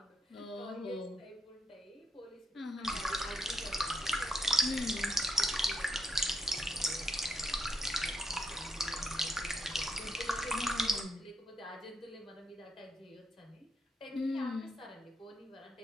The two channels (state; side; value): normal; both; correlation 0.79